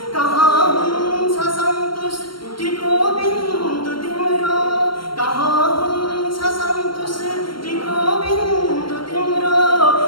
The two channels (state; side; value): late; right; 0.73 ms